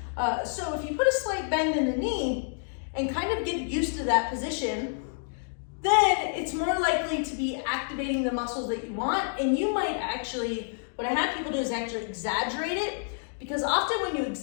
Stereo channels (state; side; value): silent; right; digital silence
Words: So if you put a slight bend in the knee and kind of get used to that position, then it's more likely to be activating the muscles that you want. And you might actually, what I have people do is actually exaggerate it, because often when you